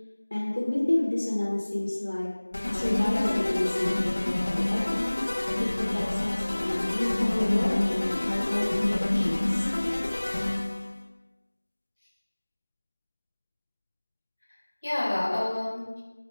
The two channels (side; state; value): both; inverted; correlation -1.00